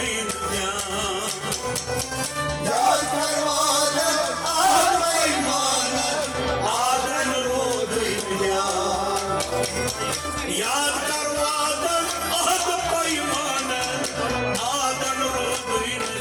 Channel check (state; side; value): identical; both; correlation 1.00